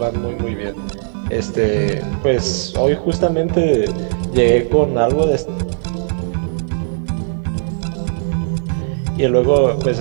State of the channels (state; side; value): silent; left; 60 dB below the other